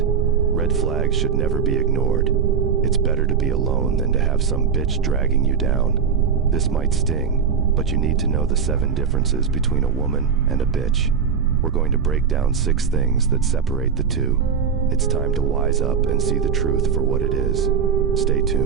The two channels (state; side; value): quieter; left; 6.6 dB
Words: Red flags should never be ignored. It's better to be alone than to have some bitch dragging you down. This might sting, but you need to know the 7 differences between a woman and a bitch. We're going to break down 6 things that separate the two. It's time to wise up and see the truth for what it is. Stay